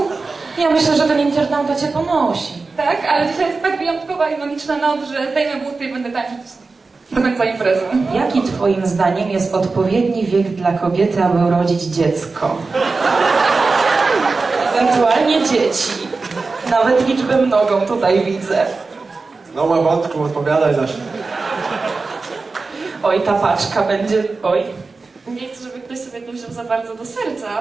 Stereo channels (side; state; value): left; quieter; 4.0 dB